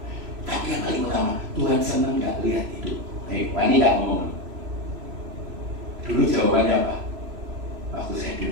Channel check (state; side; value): late; left; 3.0 ms